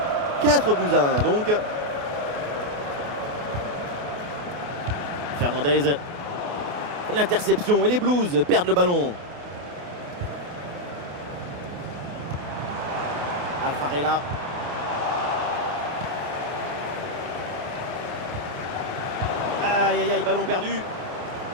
« 4-1 donc. Fernandez. L'interception et les Blues perdent le ballon. Alfarella. Aïe, aïe, aïe, ballon perdu.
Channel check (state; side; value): late; left; 28 ms